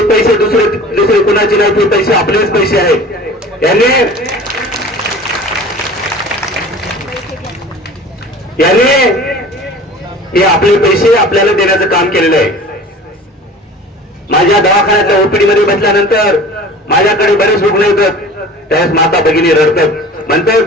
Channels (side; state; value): both; normal; correlation 0.41